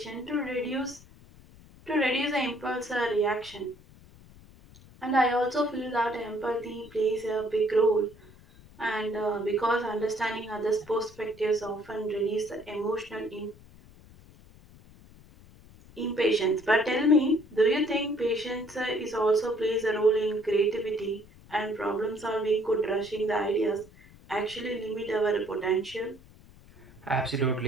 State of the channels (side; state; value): left; noise; rumble, 23 dB below the sound